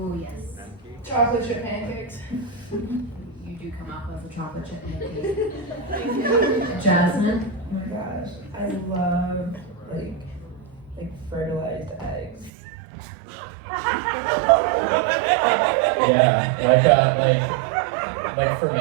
yes. Chocolate chip pancakes. You do come up with a chocolate chip pancake. Jasmine? Oh my gosh, I love like fertilized eggs. Yeah, like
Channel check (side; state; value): left; drops out; at 12.5 s